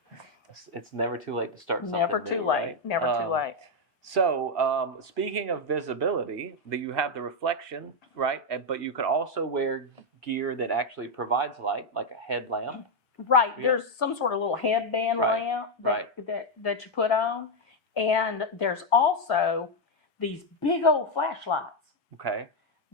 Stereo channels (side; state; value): both; normal; correlation 0.02